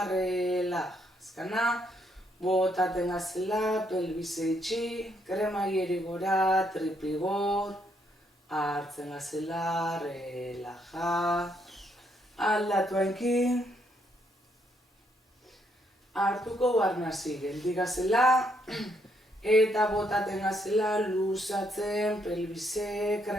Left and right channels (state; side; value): normal; both; correlation 0.74